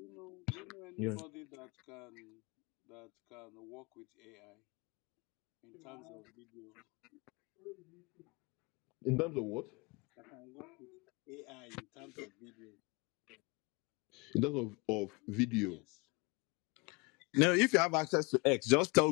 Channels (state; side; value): quieter; right; 28.4 dB